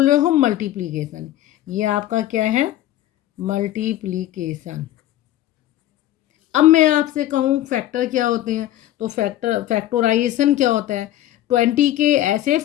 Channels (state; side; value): quieter; right; 13.7 dB